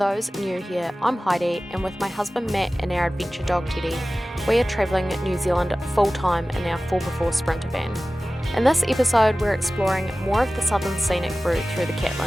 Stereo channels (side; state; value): both; normal; correlation 0.97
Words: new here, I'm Heidi, and with my husband Matt and our adventure dog Teddy, we are travelling New Zealand full time in our 4x4 Sprinter van. In this episode, we're exploring more of the southern scenic route through the